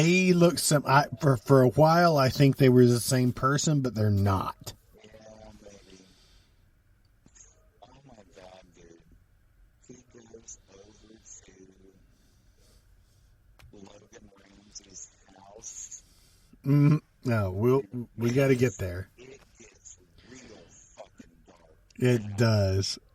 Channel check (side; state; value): both; identical; correlation 1.00